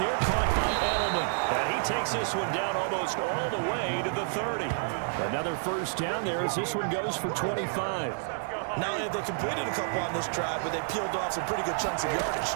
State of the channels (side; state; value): left; silent; 58 dB below the other